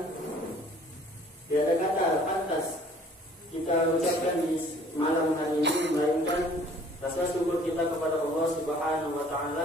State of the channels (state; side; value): normal; both; correlation 0.55